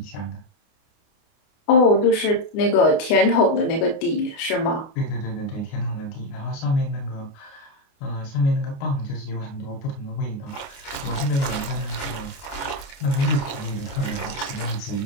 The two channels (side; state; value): right; late; 29 ms